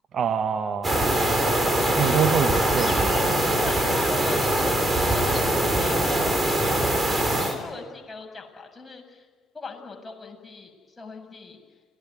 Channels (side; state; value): both; normal; correlation 0.77